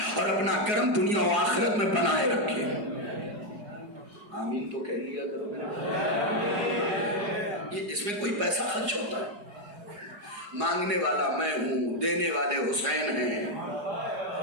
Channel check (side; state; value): left; late; 4.8 ms